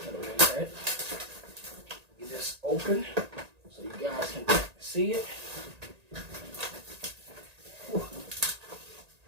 Get this open so you guys can see it.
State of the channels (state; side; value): late; left; 1.8 ms